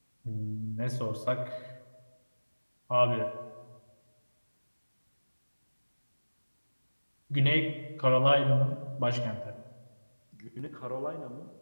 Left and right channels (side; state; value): both; inverted; correlation -1.00